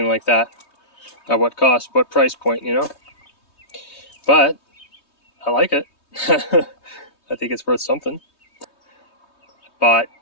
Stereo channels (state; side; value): late; right; 3.2 ms